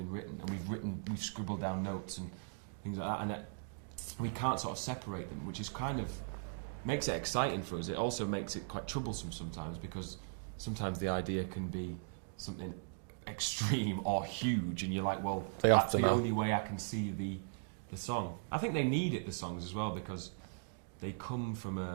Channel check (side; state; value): left; silent; digital silence